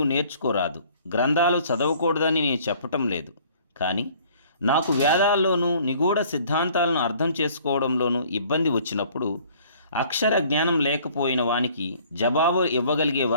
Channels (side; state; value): both; inverted; correlation -0.55